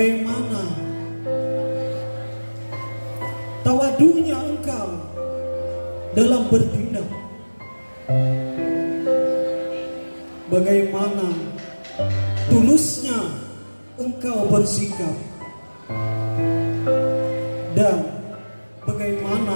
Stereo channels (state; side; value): inverted; both; correlation -1.00